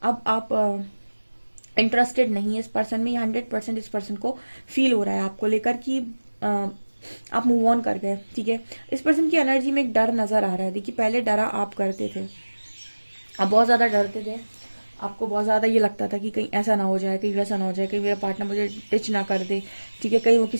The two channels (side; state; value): both; inverted; correlation -1.00